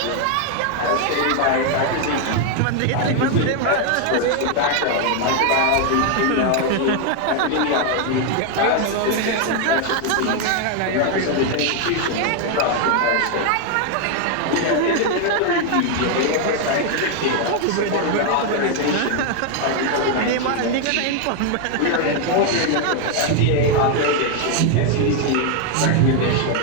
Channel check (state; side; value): different; both; correlation 0.00